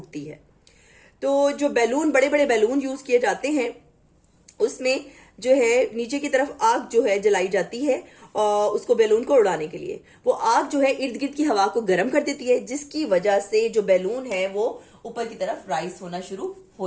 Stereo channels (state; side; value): identical; both; correlation 1.00